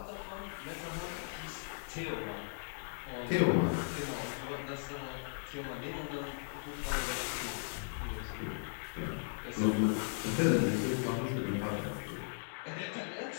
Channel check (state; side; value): silent; right; 53 dB below the other